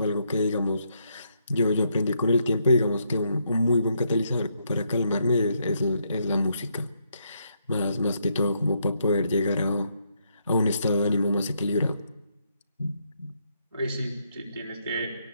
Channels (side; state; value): both; inverted; correlation -0.76